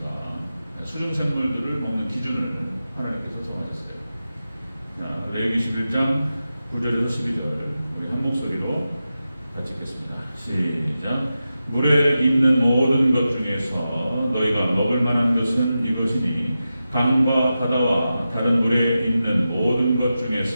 수중생물들을 먹는 기준을 하나님께서 정하셨어요. 레위기 11장 9절에서 12절 우리 한 목소리로 같이 읽겠습니다. 시작. 물에 있는 모든 것 중에서 너희가 먹을 만한 것은 이것이니 강과 바다와 다른 물에 있는 모든 것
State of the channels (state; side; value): inverted; both; correlation -0.92